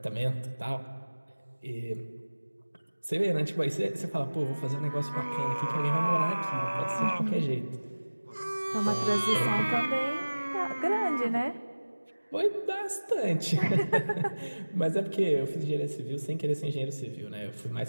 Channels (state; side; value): inverted; both; correlation -1.00